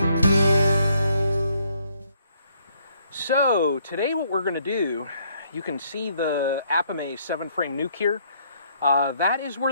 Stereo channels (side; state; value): both; inverted; correlation -0.68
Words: So today what we're going to do, you can see the Apimaye 7-frame nuke here. That is where